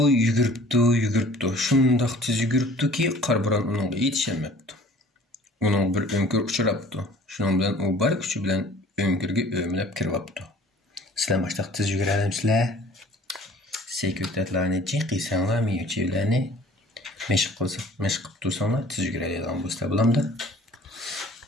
yuguribdi. Shundoq tez yuguribdiki, qarbo'ron uningga yetishmabdi. Uning bir önkür uchrabdi. Shuning bilan u bor kuchi bilan önkürga o'mlab kiribdi. Sizlar boshliq tez yugurasizlar. Sekretlarni chiqisanglar, miyuchilarni mashq qilib tursanglar, tez yuguradigan bo'lsa bo'lamdi.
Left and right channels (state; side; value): normal; both; correlation 0.50